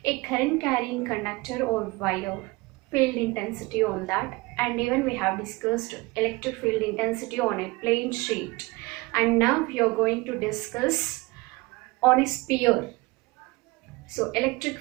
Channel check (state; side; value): quieter; left; 23.5 dB